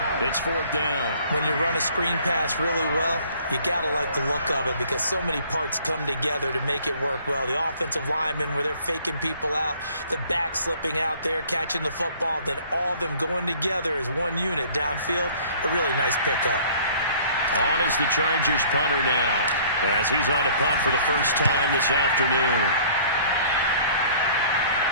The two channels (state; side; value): inverted; both; correlation -0.54